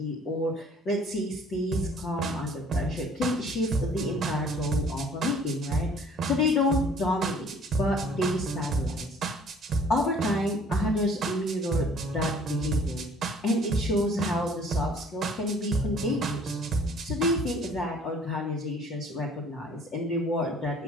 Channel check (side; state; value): both; normal; correlation 0.54